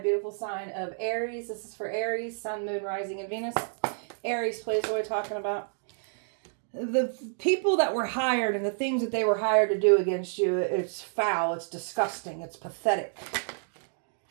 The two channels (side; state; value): left; silent; digital silence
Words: sign of Aries. This is for Aries, Sun, Moon, Rising, and Venus. Aries, please, what are we talking about? The people that were hired and the things that they were hired to do against you, it's foul, it's disgusting, it's pathetic.